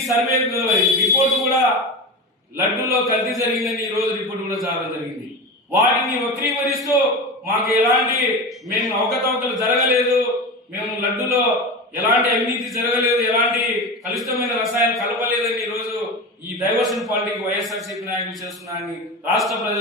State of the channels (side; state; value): both; normal; correlation 0.25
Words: సర్వే రిపోర్టు కూడా లడ్డూలో కల్తీ జరిగిందని ఈ రోజు రిపోర్టు కూడా రావడం జరిగింది. వాటిని వక్రీకరిస్తూ మాకు మేము అవకతవకలు జరగలేదు, మేము లడ్డూలో ఎలాంటి అవినీతి జరగలేదు, ఎలాంటి కలుషితమైన రసాయనాలు కలపలేదని ఈరోజు ఈ డైవర్షన్ పాలిటిక్స్ వైఎస్ఆర్సీపీ నాయకులు చేస్తున్నారని రాష్ట్ర